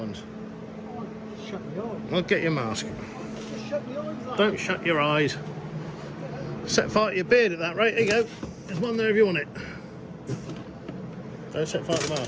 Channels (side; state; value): both; identical; correlation 1.00